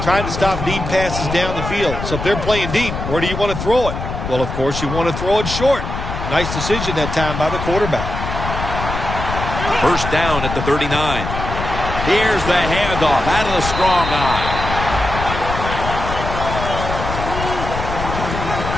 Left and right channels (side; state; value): left; noise; rumble, 5 dB below the sound